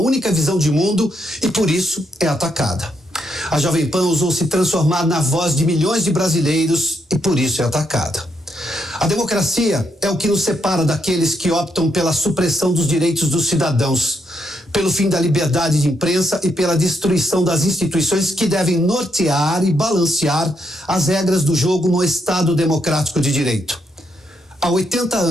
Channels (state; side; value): normal; both; correlation 0.78